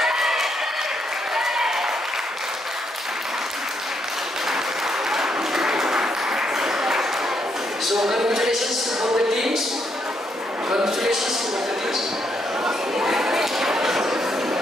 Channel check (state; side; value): normal; both; correlation 0.76